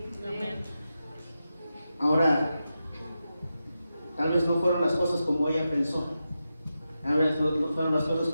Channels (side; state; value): both; inverted; correlation -0.90